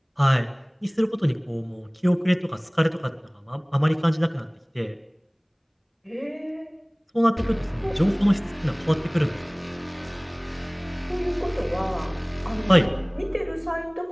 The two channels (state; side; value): identical; both; correlation 1.00